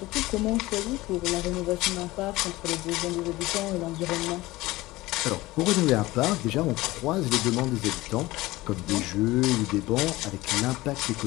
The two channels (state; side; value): quieter; right; 19.1 dB